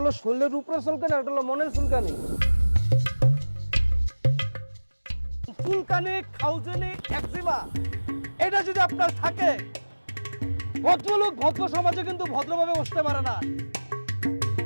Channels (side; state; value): both; inverted; correlation -1.00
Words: শরীরের উপরে চুলকানি, একটা হলো মনের চুলকানি। চুলকানি, খাউজনি, একজিমা এটা যদি আপনার থাকে, ভদ্রলোক ভদ্র সমাজে কিন্তু ভদ্রভাবে বসতে পারে না।